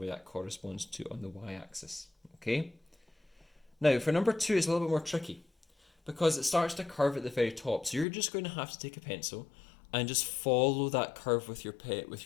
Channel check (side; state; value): right; drops out; at 8.1 s